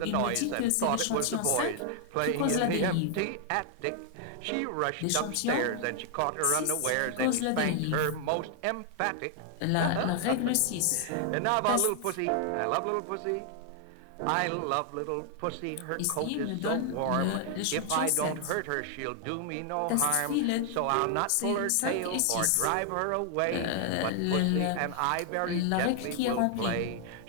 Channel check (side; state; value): both; different; correlation 0.00